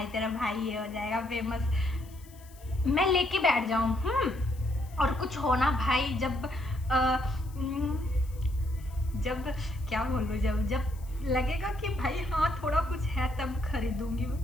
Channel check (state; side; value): noise; left; hiss, 25 dB below the sound